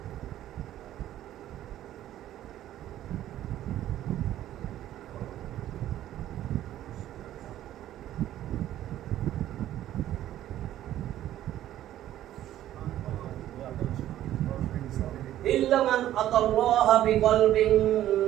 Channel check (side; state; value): left; quieter; 12.8 dB